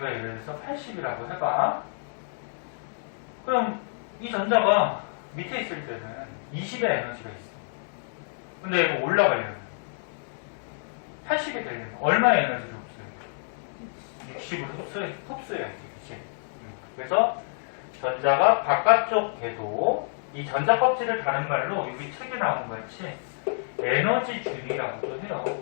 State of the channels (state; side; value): silent; right; digital silence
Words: 예를 들어서 80이라고 해봐. 그럼 이 전자가 밑에 있을 때는 20의 에너지가 있어. 근데 이거 올라가려면 80이 되려면 얼마의 에너지를 흡수해야 돼? 60을 흡수해야지. 그치? 그래서 전자가 바깥쪽 궤도, 이 전자 껍질을 다른 말로 여기 책에 나온 것 같이 에너지 준이라고도 해요.